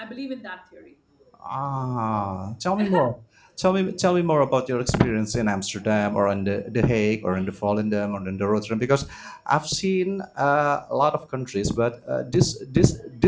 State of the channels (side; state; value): both; identical; correlation 1.00